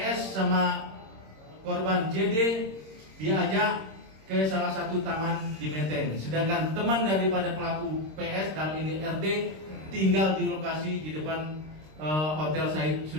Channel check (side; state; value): left; late; 26 ms